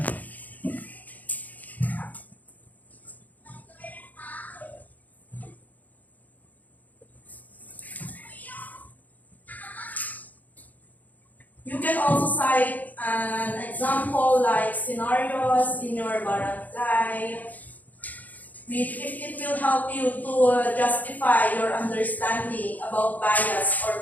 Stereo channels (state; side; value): late; right; 0.080 ms